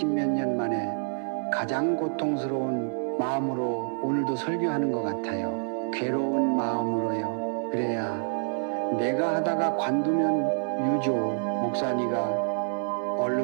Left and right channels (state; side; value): silent; left; 60 dB below the other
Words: 년 만에 가장 고통스러운 마음으로 오늘도 설교하는 것 같아요. 괴로운 마음으로요. 그래야 내가 하다가 관두면 유조 목사니가